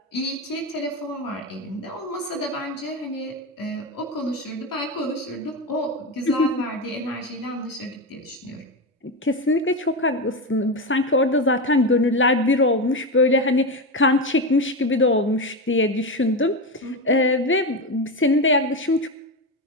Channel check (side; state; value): both; normal; correlation 0.16